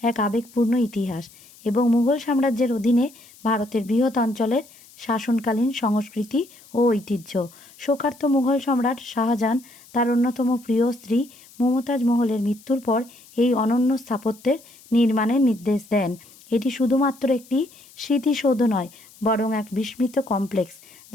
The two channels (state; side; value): noise; left; hiss, 24 dB below the sound